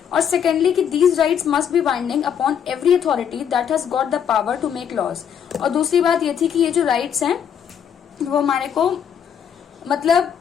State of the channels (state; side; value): quieter; right; 8.3 dB